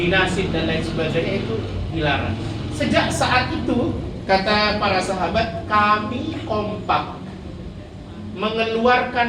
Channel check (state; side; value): identical; both; correlation 1.00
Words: nasib dan lain sebagainya itu dilarang. Sejak saat itu, kata para sahabat, kami kompak